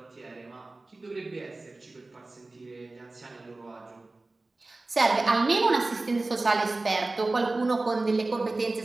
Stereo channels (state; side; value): quieter; left; 3.2 dB